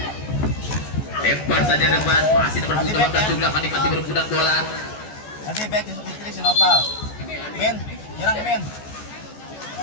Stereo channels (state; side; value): late; right; 14 ms